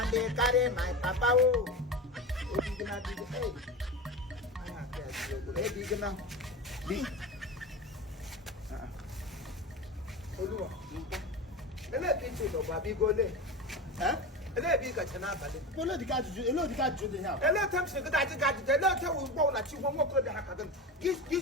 they carry my papa. Oh, big nothing, hey. Hey, big now. Big. Ele pinche do babi gole. Ele bi ka chana bale. Ele di ka ju de ha. Ele tem se ka ti ka ti. Ele te wo bo na chi wo mo ko de ha ka dem. Gi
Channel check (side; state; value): both; normal; correlation 0.24